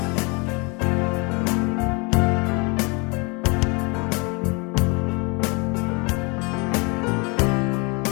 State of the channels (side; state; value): right; quieter; 30.1 dB